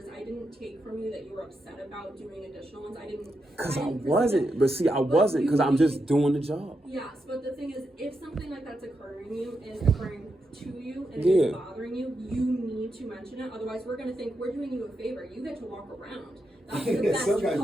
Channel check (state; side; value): normal; both; correlation 0.85